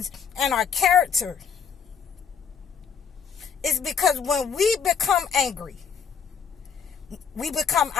and our character, is because when we become angry, we become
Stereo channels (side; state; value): right; quieter; 6.9 dB